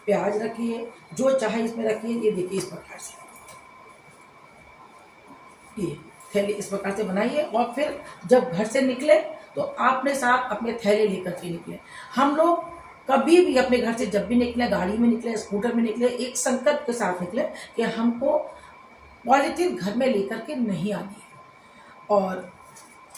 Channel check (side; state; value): both; identical; correlation 1.00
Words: प्याज रखिए, जो चाहे इसमें रखिए। ये देखिए इस प्रकार से ये थैले इस प्रकार से बनाइए, और फिर जब घर से निकले तो आपने साथ अपने थैले लेकर के निकले। हम लोग कभी भी अपने घर से जब भी निकले, गाड़ी में निकले, स्कूटर में निकले, एक संकल्प के साथ निकले कि हमको पॉलीथीन घर में लेकर के नहीं आनी है। और